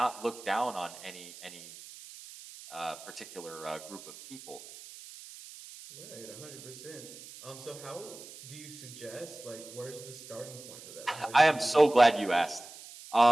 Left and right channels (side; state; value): right; noise; hiss, 16 dB below the sound